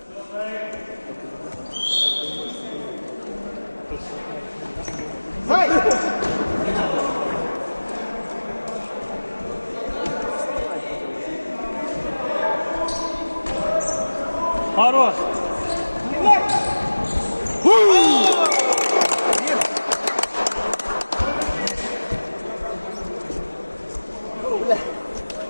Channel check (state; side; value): inverted; both; correlation -1.00